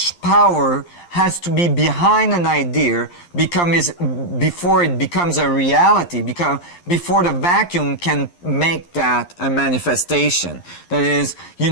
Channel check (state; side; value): late; right; 11 ms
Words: power has to be behind an idea before it becomes a reality, before the vacuum can make that a manifestation. That is, you